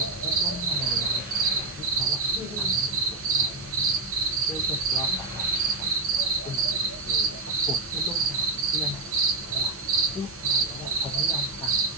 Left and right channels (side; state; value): left; quieter; 3.4 dB